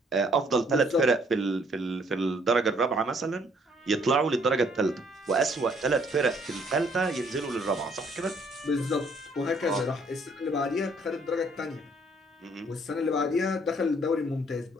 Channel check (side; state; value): both; normal; correlation 0.64